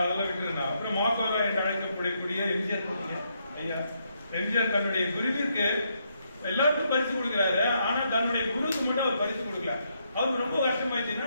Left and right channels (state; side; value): inverted; both; correlation -0.77